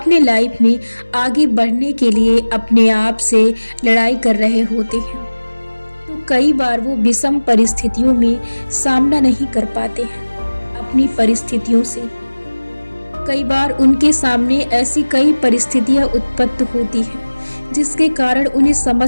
लाइफ में आगे बढ़ने के लिए अपने आप से लड़ाई कर रहे होते हैं, तो कई बार वो विषम परिस्थितियों में सामना नहीं कर पाते हैं अपनी परिस्थितियों से। कई बार उनके सामने ऐसी कई परिस्थितियां उत्पन्न होती हैं जिसके कारण उन्हें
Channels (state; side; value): inverted; both; correlation -1.00